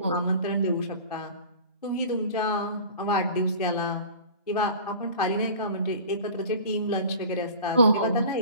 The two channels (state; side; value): inverted; both; correlation -0.40